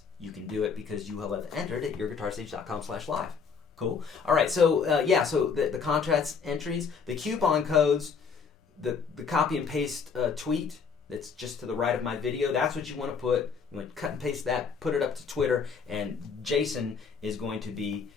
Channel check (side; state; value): right; quieter; 5.7 dB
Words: you can do it because you will have entered at YourGuitarSage.com/live. Cool. All right. So so the contest entries, the coupon codes, the copy and paste tweet that's just to the right of my video. That's what you want to put. You want to cut and paste that, put it up to Twitter, and Jason is going to be